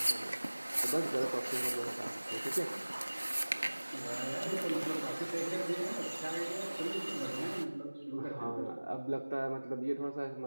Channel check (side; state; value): both; inverted; correlation -1.00